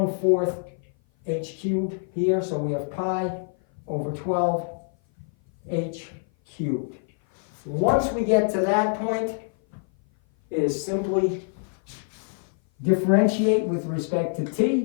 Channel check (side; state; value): right; silent; 56 dB below the other